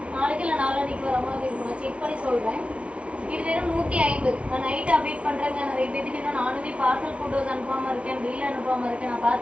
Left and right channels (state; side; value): late; left; 0.061 ms